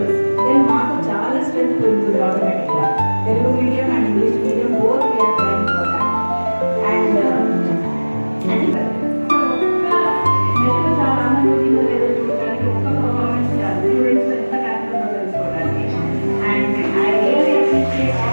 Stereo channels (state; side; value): inverted; both; correlation -1.00